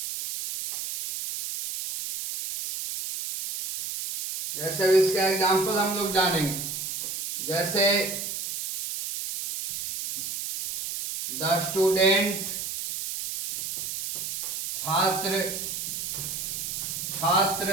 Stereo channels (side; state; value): right; noise; hiss, 5 dB below the sound